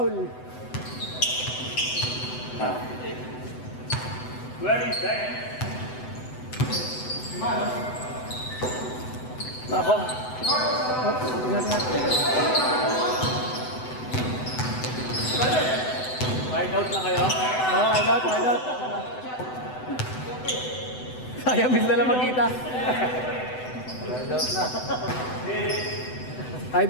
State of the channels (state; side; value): late; right; 7.9 ms